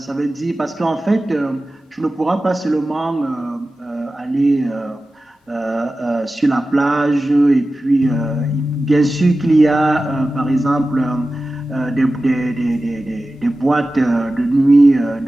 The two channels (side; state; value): both; normal; correlation 0.95